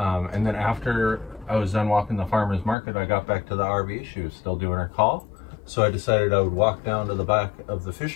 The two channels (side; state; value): right; drops out; at 2.8 s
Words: then after I was done walking the farmer's market, I got back to the RV. She was still doing her call. So I decided I would walk down to the back of the